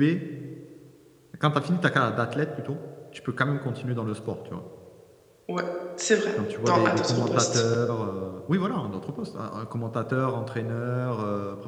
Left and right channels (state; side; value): identical; both; correlation 1.00